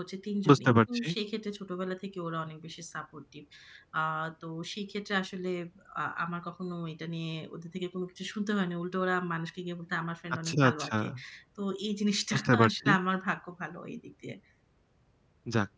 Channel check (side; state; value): both; identical; correlation 1.00